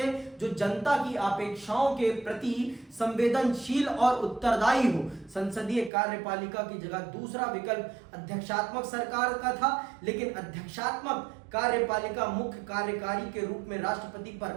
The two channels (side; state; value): left; drops out; at 5.9 s